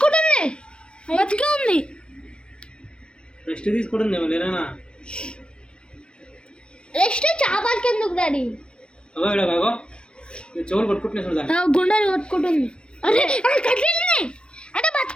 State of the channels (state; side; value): late; right; 0.056 ms